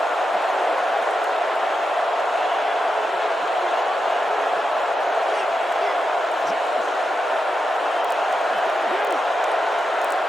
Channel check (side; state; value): both; normal; correlation 0.88